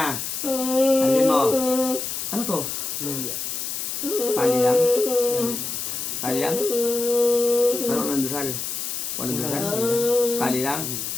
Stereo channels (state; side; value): noise; left; hiss, 4 dB below the sound